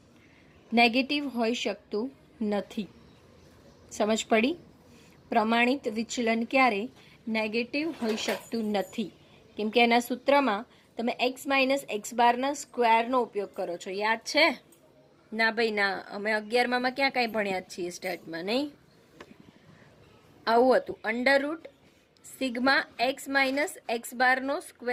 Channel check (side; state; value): both; identical; correlation 1.00